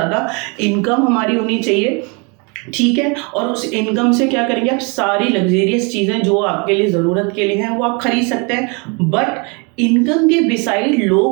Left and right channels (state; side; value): quieter; left; 32.0 dB